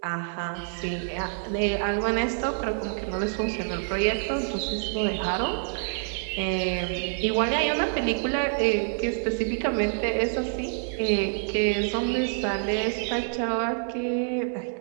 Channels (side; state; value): left; silent; digital silence